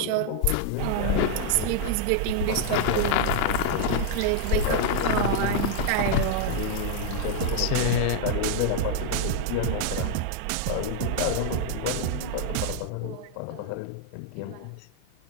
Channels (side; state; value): both; different; correlation 0.00